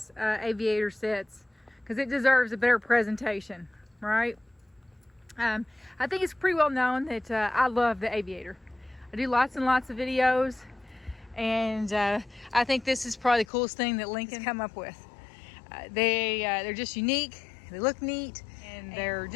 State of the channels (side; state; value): right; drops out; at 13.5 s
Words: Aviator sits because it deserves a better presentation, right? I think it's pretty well known that I love the Aviator. I do lots and lots of videos, and I think this is probably the coolest thing that Lincoln's come up with. They're just unique, they look neat, and they're